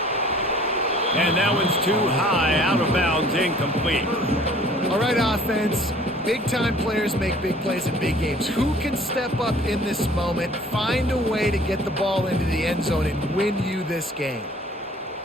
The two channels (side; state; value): both; normal; correlation 0.52